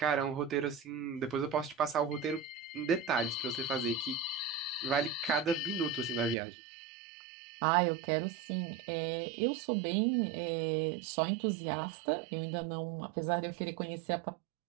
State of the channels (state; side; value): drops out; left; at 6.4 s